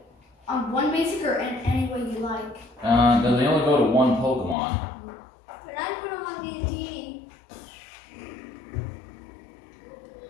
on one basic or any way you like. No, they only go to 1 Pokemon. But I put him on D&D.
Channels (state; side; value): drops out; right; at 4.5 s